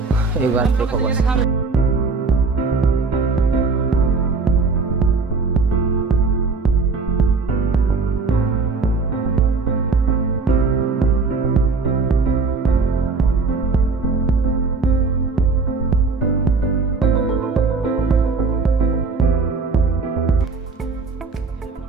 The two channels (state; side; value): quieter; left; 4.3 dB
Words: एक बार देखो बस।